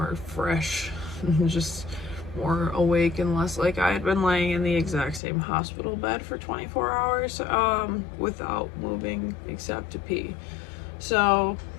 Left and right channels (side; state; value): right; drops out; at 5.2 s